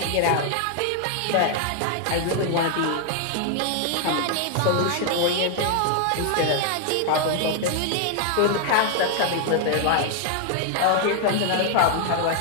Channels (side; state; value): both; different; correlation 0.00